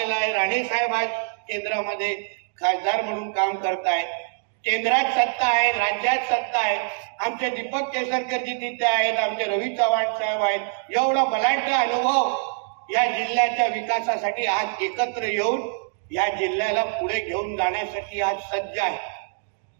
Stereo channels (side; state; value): left; silent; digital silence